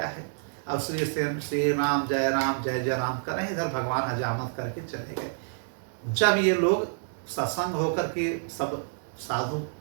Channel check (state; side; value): silent; left; digital silence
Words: है। अब श्री राम जय राम कर रहे हैं। इधर भगवान हजामत करके चले गए। जब ये लोग सत्संग होकर के सब साधु